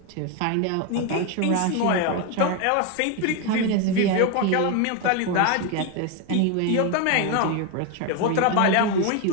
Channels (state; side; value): different; both; correlation 0.02